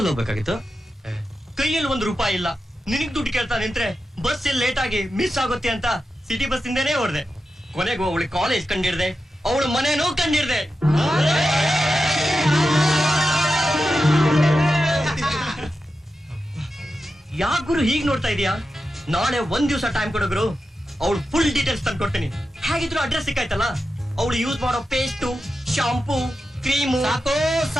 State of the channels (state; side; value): normal; both; correlation 0.90